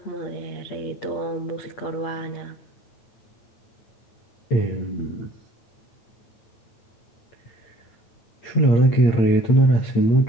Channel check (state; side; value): late; right; 8.5 ms